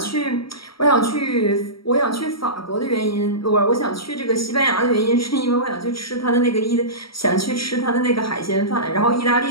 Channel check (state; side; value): late; right; 0.75 ms